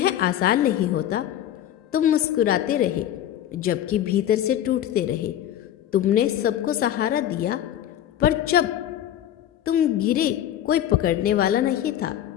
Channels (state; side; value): quieter; right; 11.4 dB